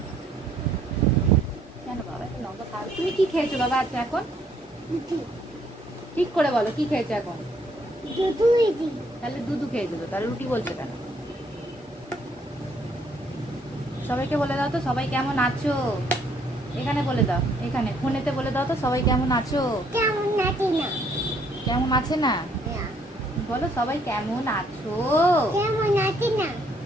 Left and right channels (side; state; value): both; normal; correlation 0.67